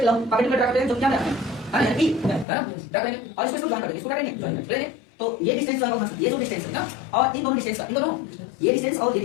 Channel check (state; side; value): drops out; right; at 2.5 s